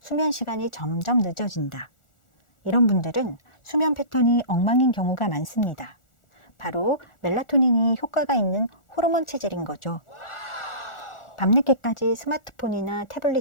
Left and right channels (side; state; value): right; late; 1.4 ms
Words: 수면 시간이 점점 늦어진다. 이런 분들은 수면 패턴이 엉망인 경우가 많습니다. 바로 멜라토닌이 효과가 있는 호르몬 체질인 거죠. 밤늦게까지 스마트폰이나